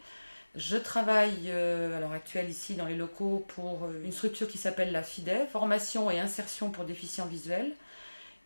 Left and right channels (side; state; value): both; inverted; correlation -1.00